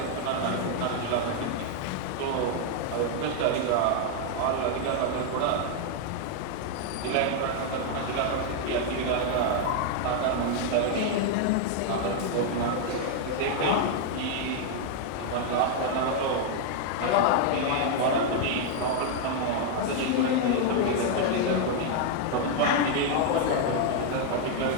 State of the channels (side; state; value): both; different; correlation 0.00